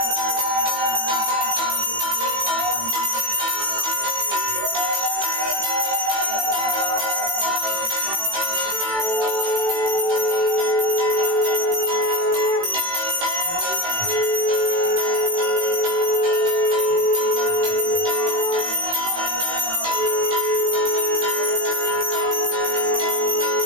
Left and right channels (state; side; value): late; left; 18 ms